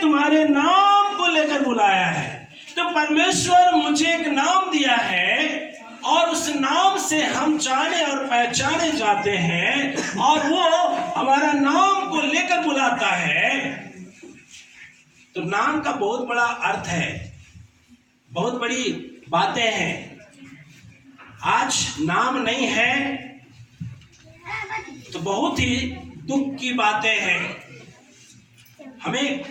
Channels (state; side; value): identical; both; correlation 1.00